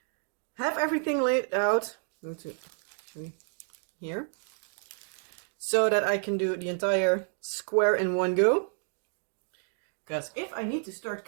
have everything laid out. I'm going to show you here. So that I can do the entire square in one go. Because if I need to start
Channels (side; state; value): left; silent; 58 dB below the other